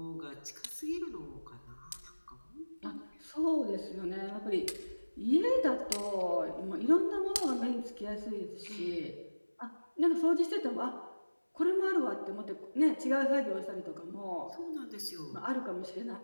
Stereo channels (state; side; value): inverted; both; correlation -1.00